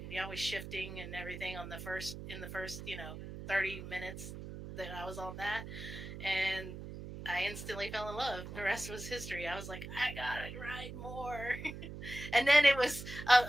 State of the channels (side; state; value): right; noise; hum, 10 dB below the sound